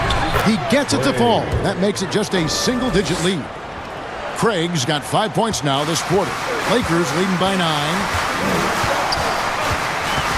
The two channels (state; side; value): identical; both; correlation 1.00